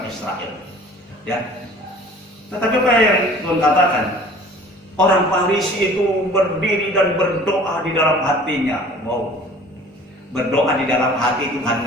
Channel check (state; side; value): normal; both; correlation 0.48